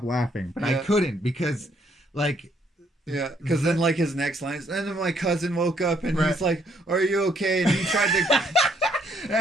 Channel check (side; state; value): both; normal; correlation 0.69